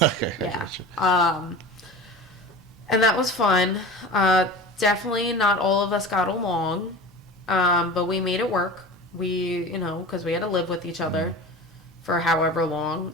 Yeah. And that was fun. Definitely not all of us got along, but we made it work. Because we had to live with each other for however long.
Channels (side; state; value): both; normal; correlation 0.34